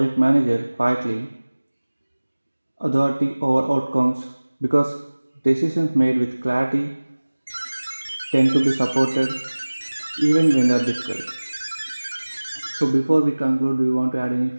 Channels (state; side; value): inverted; both; correlation -1.00